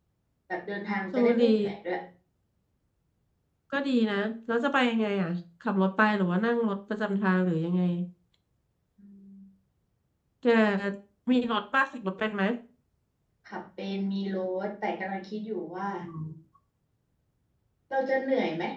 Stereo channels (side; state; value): both; identical; correlation 1.00